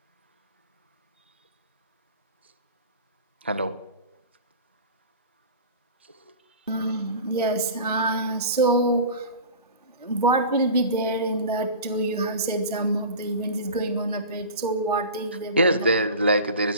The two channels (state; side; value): inverted; both; correlation -0.35